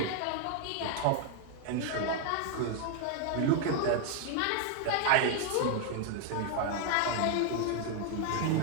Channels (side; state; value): both; different; correlation 0.00